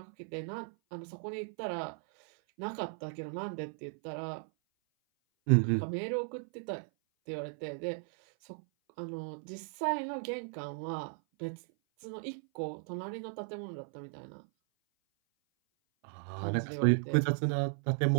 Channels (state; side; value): silent; left; 54 dB below the other